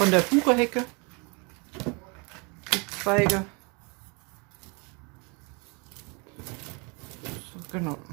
der Buchehecke die Zweige. So, genau.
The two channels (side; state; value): left; quieter; 30.2 dB